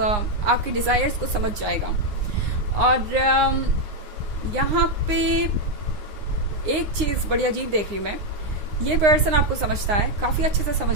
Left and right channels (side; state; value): left; late; 9.7 ms